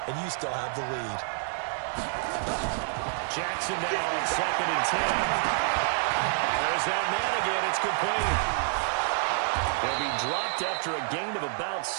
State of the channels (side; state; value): left; silent; 59 dB below the other